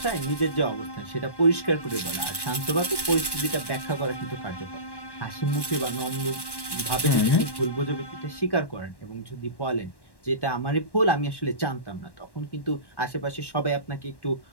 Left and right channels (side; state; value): right; late; 1.1 ms